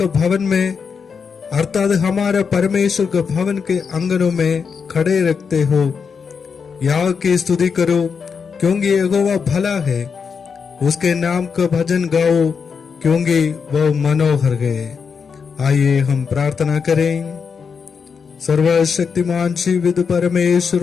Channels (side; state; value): right; quieter; 6.0 dB